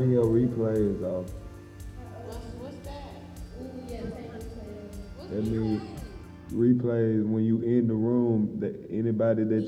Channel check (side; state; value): both; identical; correlation 1.00